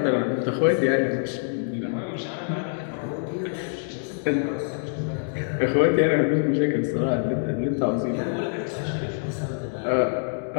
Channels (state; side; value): silent; right; digital silence